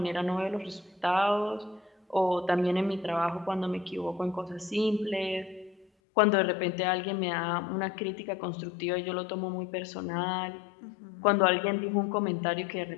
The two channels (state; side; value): drops out; right; at 5.9 s